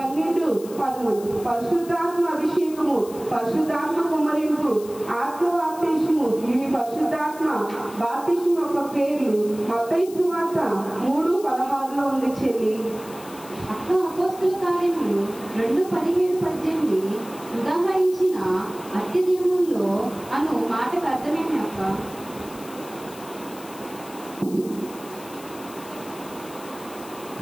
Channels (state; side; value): noise; left; hiss, 18 dB below the sound